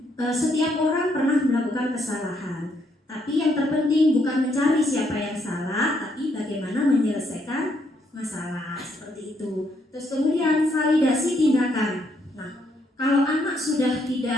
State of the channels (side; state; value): both; normal; correlation 0.73